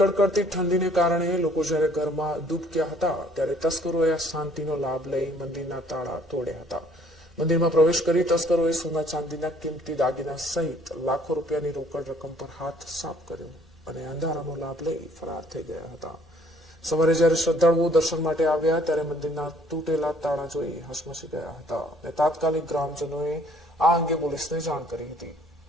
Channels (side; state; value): both; normal; correlation 0.60